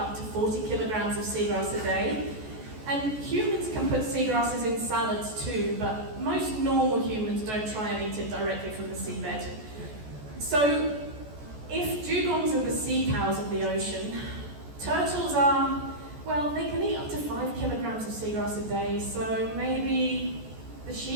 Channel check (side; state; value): left; late; 14 ms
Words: to 40 kilograms of seagrass a day, and humans can put seagrasses in salads too, but most normal humans don't try and eat it directly from the seabed. So if dugongs are the sea cows of the ocean, turtles are, well, they can eat up to 5 kilograms of seagrass a day, so maybe the